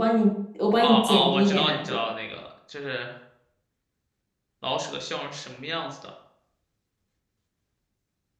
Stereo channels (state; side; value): identical; both; correlation 1.00